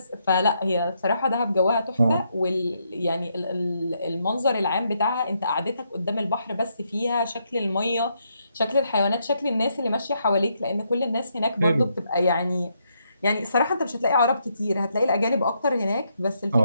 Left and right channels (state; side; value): inverted; both; correlation -0.77